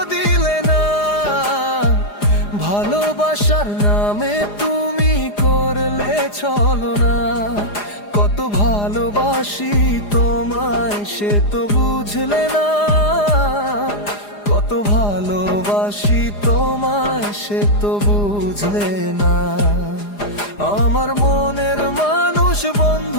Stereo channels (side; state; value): right; late; 4.9 ms